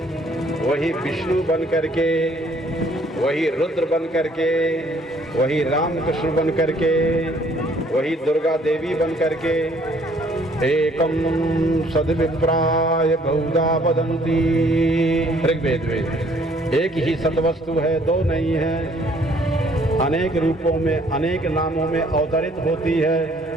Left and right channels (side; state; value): both; normal; correlation 0.61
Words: वही विष्णु बन करके, वही रुद्र बन करके, वही रामकृष्ण बन करके, वही दुर्गा देवी बन करके, एकम सद्विप्राय बहुधा वदन्ति, ऋग्वेद में एक ही सतवस्तु है, दो नहीं है, अनेक रूपों में अनेक नामों में अवतरित होती है।